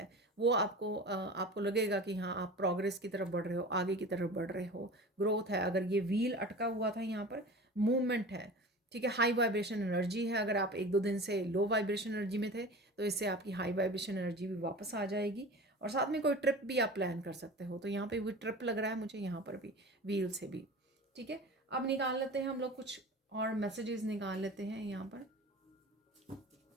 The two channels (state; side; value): normal; both; correlation 0.36